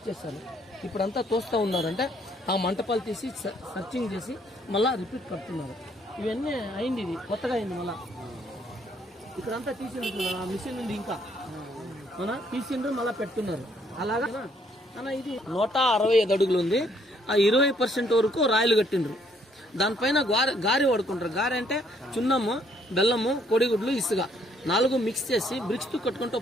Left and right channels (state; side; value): normal; both; correlation 0.67